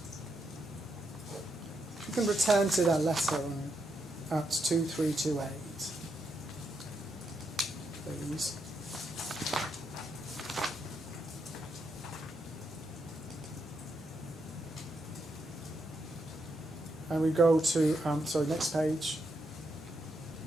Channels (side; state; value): both; normal; correlation 0.81